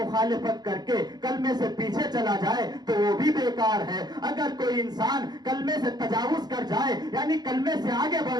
کر کے کلمے سے پیچھے چلا جائے تو وہ بھی بیکار ہے. اگر کوئی انسان کلمے سے تجاوز کر جائے یعنی کلمے سے آگے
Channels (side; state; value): left; late; 0.20 ms